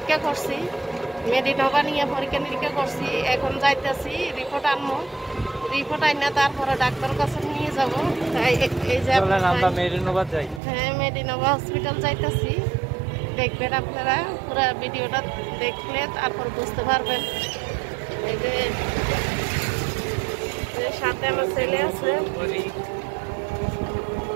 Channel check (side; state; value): left; drops out; at 10.6 s